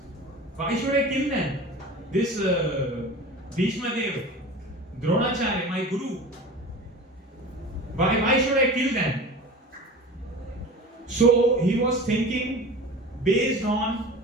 Why should I kill them? This Bhishma Dev, Dronacharya, my guru. Why should I kill them? So he was thinking based on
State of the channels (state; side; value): normal; both; correlation 0.35